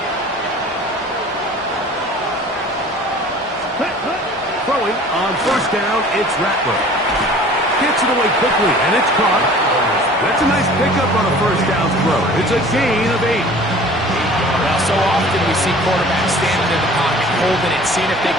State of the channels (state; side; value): normal; both; correlation 0.46